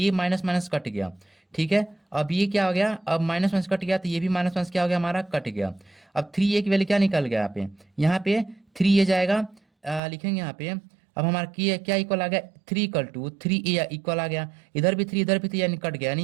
माइनस माइनस कट गया। ठीक है, अब ये क्या हो गया, अब माइनस माइनस कट गया, तो ये भी माइनस माइनस क्या हो गया हमारा, कट गया। अब 3a की वैल्यू क्या निकल गया, यहाँ पे 3a जाएगा, लिखेंगे यहाँ पे। अब हमारा क्या इक्वल आ गया, 3 इक्वल आ गया, इधर भी 3 इधर भी 3, यानी कट गया,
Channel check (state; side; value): drops out; left; at 10.0 s